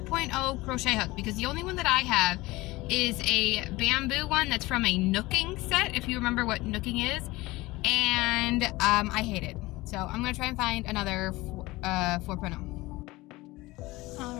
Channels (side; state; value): right; quieter; 20.3 dB